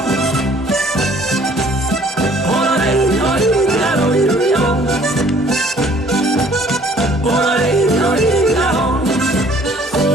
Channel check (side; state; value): both; normal; correlation 0.57